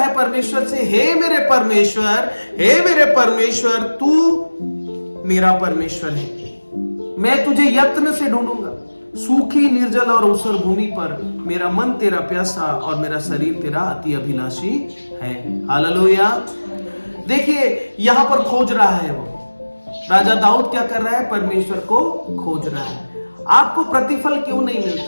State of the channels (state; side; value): inverted; both; correlation -1.00